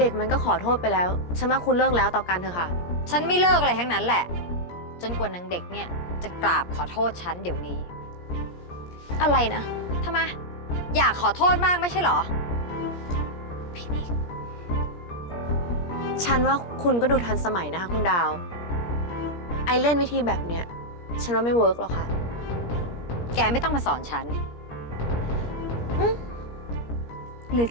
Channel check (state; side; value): late; right; 17 ms